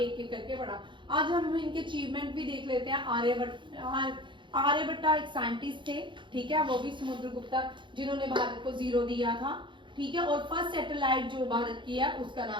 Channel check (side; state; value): left; late; 0.23 ms